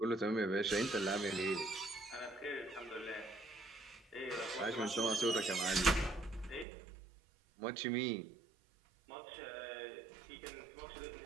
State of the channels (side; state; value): left; drops out; at 6.7 s